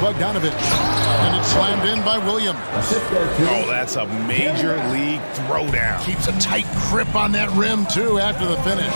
And it's slammed in by Williams. Oh, that's a major league throwdown. Keeps a tight grip on that rim, too, after the finish.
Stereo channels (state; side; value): inverted; both; correlation -1.00